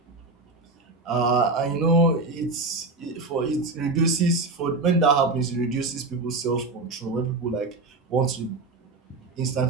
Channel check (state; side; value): quieter; left; 3.5 dB